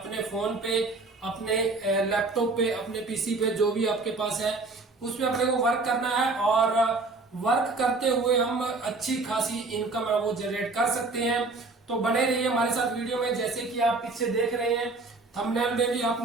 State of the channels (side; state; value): left; quieter; 3.6 dB